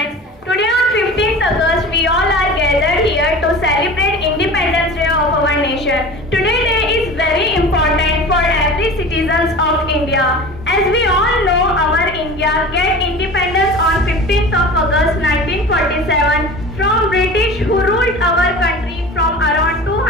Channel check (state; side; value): normal; both; correlation 0.37